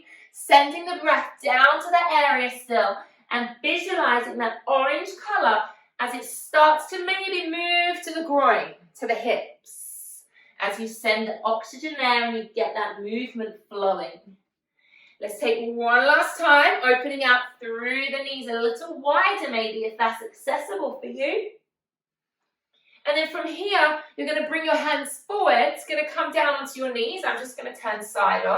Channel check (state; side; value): identical; both; correlation 1.00